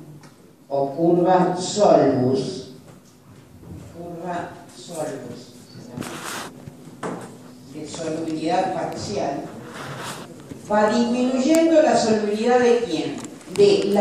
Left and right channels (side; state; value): both; identical; correlation 1.00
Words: o curva solvus, de solubilidad parcial, va disminuyendo la solubilidad de ¿quién? De